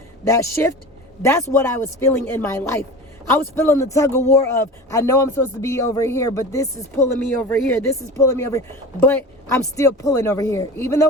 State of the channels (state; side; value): normal; both; correlation 0.33